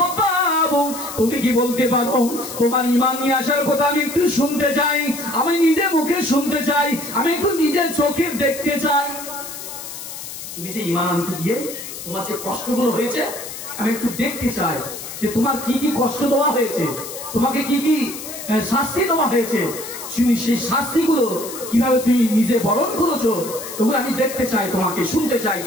তুমি কি বলতে পারো তোমার ঈমান নিয়ে আসার কথা আমি একটু শুনতে চাই, আমি নিজে মুখে শুনতে চাই, আমি একটু নিজের চোখে দেখতে চাই। তুমি যে ঈমান আনতে গিয়ে তোমার যে কষ্টগুলো হয়েছে আমি একটু দেখতে চাই যে তোমার কি কি কষ্ট দেওয়া হয়েছে, তোমাকে কি কি শাস্তি দেওয়া হয়েছে, সেই শাস্তিগুলো কিভাবে তুমি নিজে বরণ করেছো, ওগুলো আমি দেখতে চাই, তোমাকে শুনতে চাই,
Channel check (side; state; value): left; noise; hiss, 10 dB below the sound